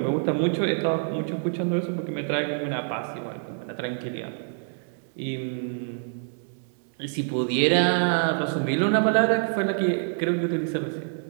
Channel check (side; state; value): left; silent; digital silence